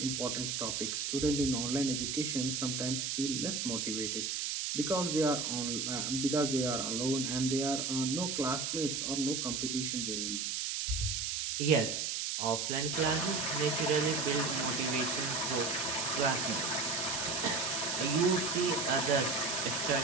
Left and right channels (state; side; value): noise; right; hiss, 1 dB below the sound